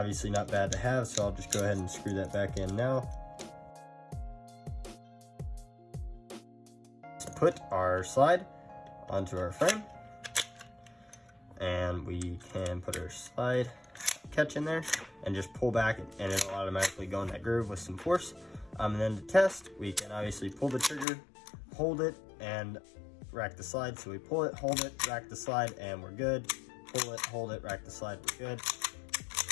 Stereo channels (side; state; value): right; drops out; at 21.1 s